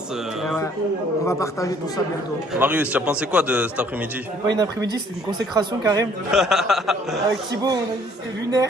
On va partager tout ça bientôt. Marius, tu as pensé quoi de cet après-midi? Pas une après-midi, c'était une consécration Karim. Avec Thibaut, on a dit c'était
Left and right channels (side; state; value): both; normal; correlation 0.60